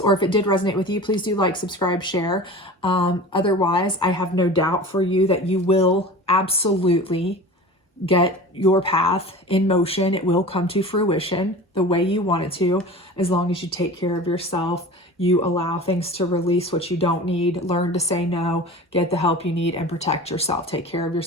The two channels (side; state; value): both; normal; correlation 0.36